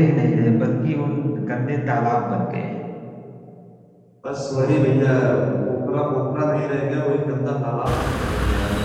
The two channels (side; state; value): both; identical; correlation 1.00